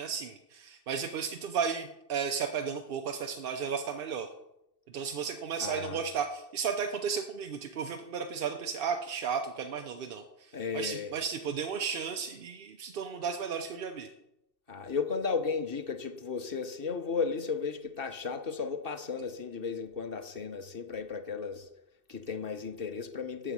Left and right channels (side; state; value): left; late; 2.7 ms